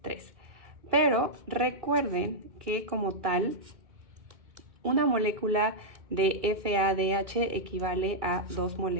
3. Pero recuerden que como tal, una molécula de FADH equivale a 2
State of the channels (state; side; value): late; left; 2.3 ms